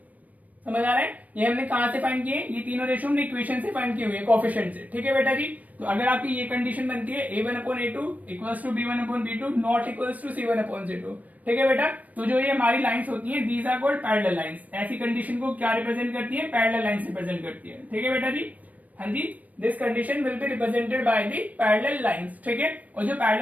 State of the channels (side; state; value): left; late; 0.073 ms